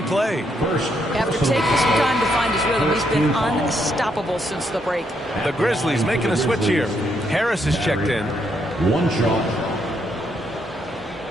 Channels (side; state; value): both; normal; correlation 0.76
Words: play. After taking some time to find his rhythm, he's been unstoppable since the break. The Grizzlies making a switch here. Harris is checked in. 1 shot.